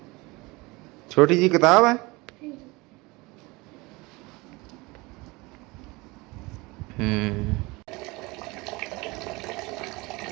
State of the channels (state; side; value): quieter; left; 23.9 dB